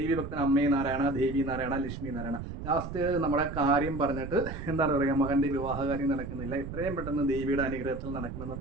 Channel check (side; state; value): right; noise; rumble, 8 dB below the sound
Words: ഭക്തൻ അമ്മേ നാരായണ, ദേവി നാരായണ, ലക്ഷ്മി നാരായണ. ലാസ്റ്റ് നമ്മുടെ കാര്യം പറഞ്ഞിട്ട് എന്താണ് പറയുക, മകൻ്റെ വിവാഹകാര്യം നടക്കുന്നില്ല, എത്രയും പെട്ടെന്ന് ദേവിയുടെ അനുഗ്രഹത്തിൽ നടക്കണമെന്ന്